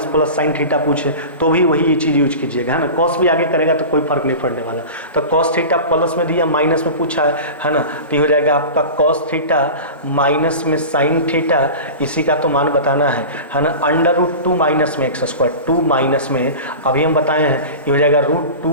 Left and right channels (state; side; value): inverted; both; correlation -0.32